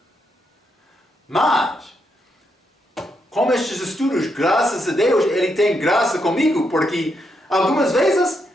Mas, com estes estudos, graças a Deus, ele tem graça comigo, porque algumas vezes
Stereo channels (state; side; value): normal; both; correlation 0.80